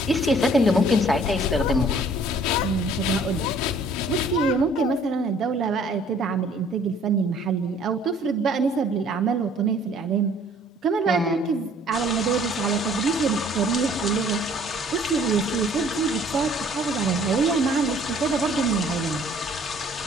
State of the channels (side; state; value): both; normal; correlation 0.57